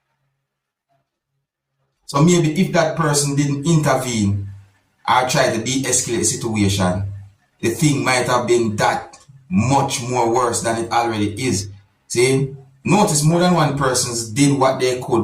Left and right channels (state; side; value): identical; both; correlation 1.00